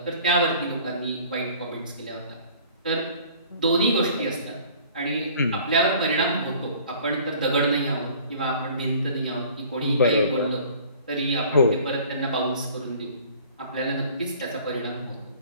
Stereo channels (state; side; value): inverted; both; correlation -0.50